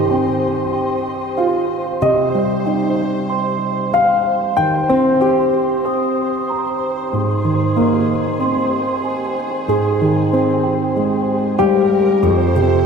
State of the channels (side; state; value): both; normal; correlation 0.56